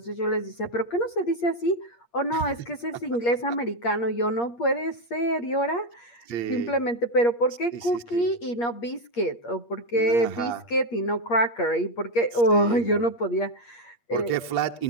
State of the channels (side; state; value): right; late; 8.5 ms